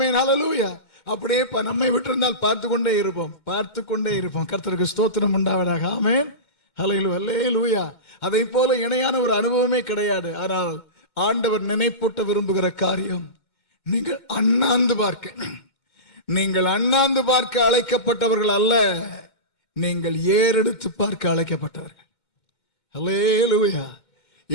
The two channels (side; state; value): right; late; 2.1 ms